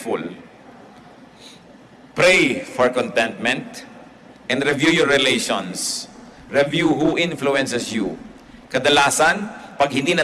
Pray for contentment and review your relations. Review who influences you. Kadalasan, pag hindi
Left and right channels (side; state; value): both; identical; correlation 1.00